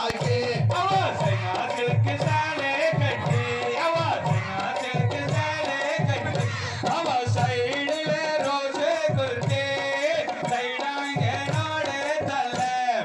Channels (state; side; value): identical; both; correlation 1.00